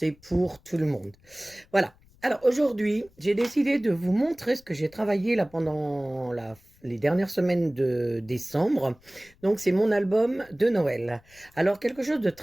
pour tout le monde. Voilà. Alors aujourd'hui, j'ai décidé de vous montrer ce que j'ai travaillé là pendant les dernières semaines de décembre. Donc c'est mon album de Noël. Alors quelque chose de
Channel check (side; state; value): left; noise; rumble, 29 dB below the sound